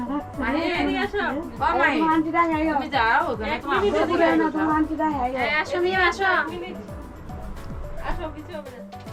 রাখ মাহিন আসো ও মাহিন আন্টি দা আইও তুমি যাও ওখানে তোমার বুবুরে না তো আন্টি দা আইও আসো মিম আসো আসো কিছু হবে না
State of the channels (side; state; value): both; identical; correlation 1.00